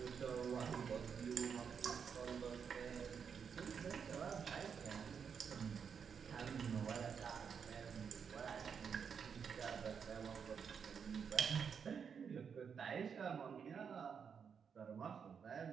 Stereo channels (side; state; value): left; quieter; 6.7 dB